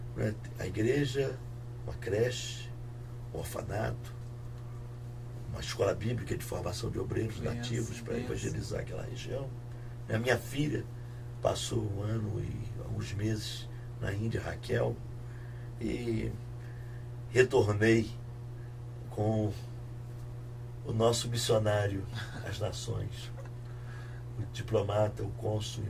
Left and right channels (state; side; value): identical; both; correlation 1.00